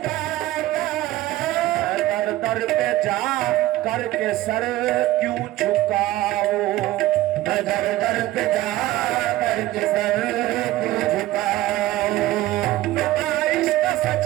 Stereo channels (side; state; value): left; quieter; 15.9 dB